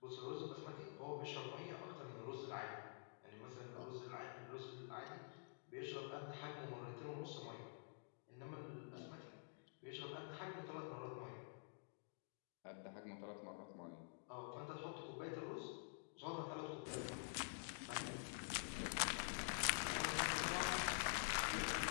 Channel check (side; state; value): right; silent; digital silence